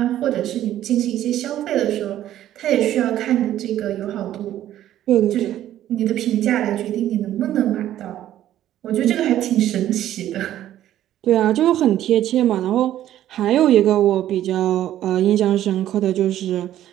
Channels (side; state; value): left; quieter; 12.4 dB